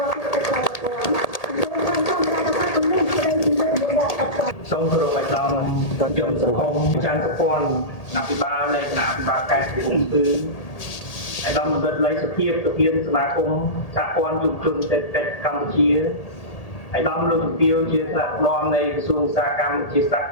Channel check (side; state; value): right; late; 1.8 ms